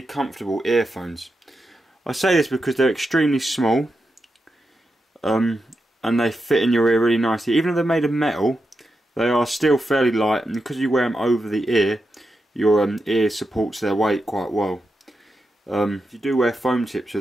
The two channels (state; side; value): normal; both; correlation 0.87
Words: comfortable earphones. I say this because they're extremely small, and they fit in your ear really nicely. Even though they're made of metal, they are still fairly light, and because you wear them over the ear, your ear supports their weight quite well. If you do wear foam tips